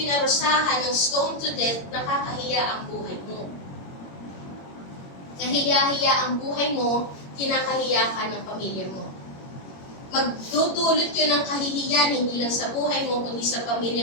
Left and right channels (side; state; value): right; late; 22 ms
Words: ng stone to death, nakakahiya ang buhay mo. Kahiya-hiya ang buhay mo, kinakahiya ka ng pamilya mo. Magdudulot yun ng kahihiyan, hindi lang sa buhay mo, kundi sa